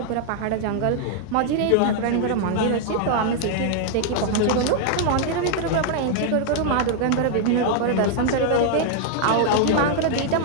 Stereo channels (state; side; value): different; both; correlation 0.00